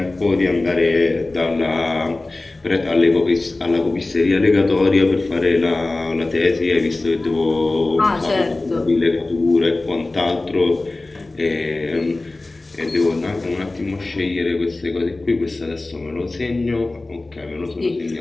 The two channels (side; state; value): right; quieter; 3.0 dB